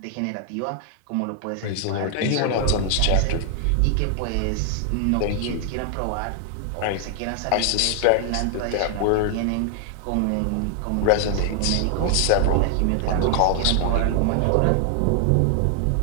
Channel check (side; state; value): both; different; correlation 0.00